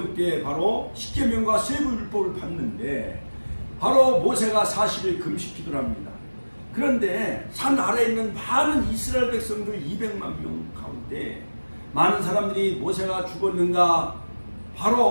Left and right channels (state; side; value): inverted; both; correlation -1.00